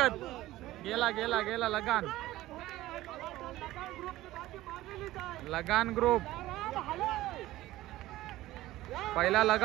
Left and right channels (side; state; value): left; quieter; 16.2 dB